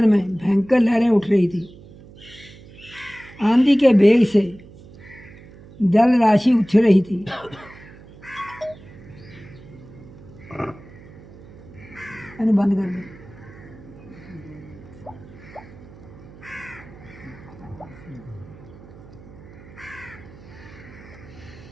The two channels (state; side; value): noise; right; hum, 20 dB below the sound